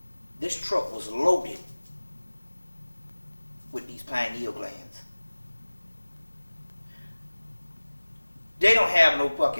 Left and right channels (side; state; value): both; inverted; correlation -1.00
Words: this truck was loaded with these pineal glands. They don't have no